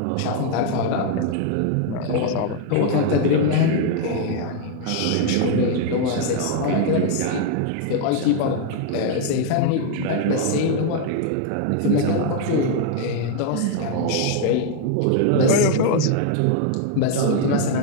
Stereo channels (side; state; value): both; different; correlation 0.00